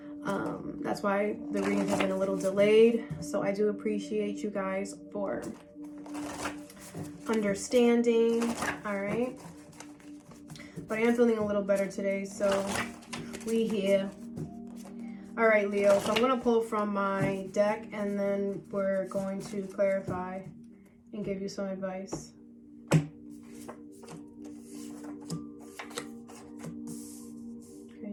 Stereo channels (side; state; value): both; identical; correlation 1.00